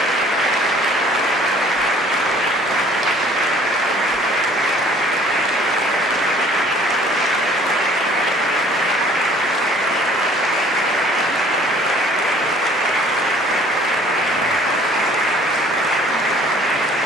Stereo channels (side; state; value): both; normal; correlation 0.54